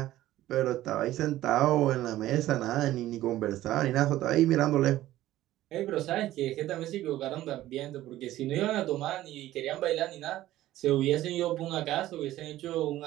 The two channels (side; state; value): left; quieter; 14.8 dB